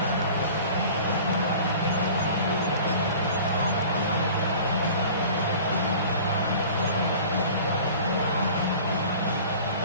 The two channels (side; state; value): both; inverted; correlation -0.43